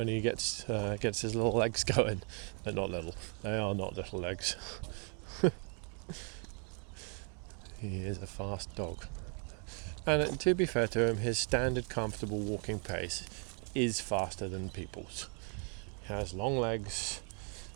he gets his little legs going. They're not little. They are not little legs. He is a fast dog. And to be fair to him, his standard comfortable walking pace is faster than people's. He has long legs,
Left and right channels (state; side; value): quieter; left; 39.5 dB